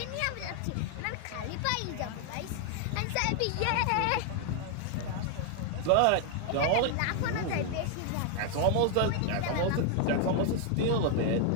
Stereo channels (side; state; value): both; different; correlation 0.00